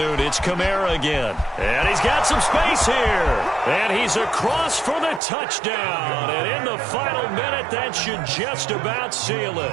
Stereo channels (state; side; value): drops out; left; at 5.2 s